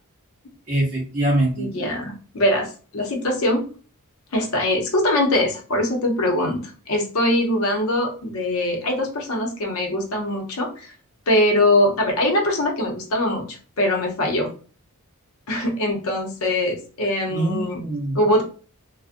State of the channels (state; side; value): normal; both; correlation 0.07